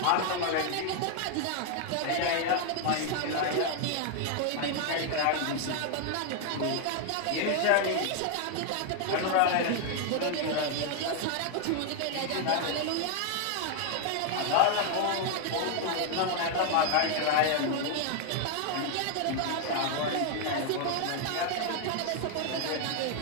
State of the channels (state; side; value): different; both; correlation 0.00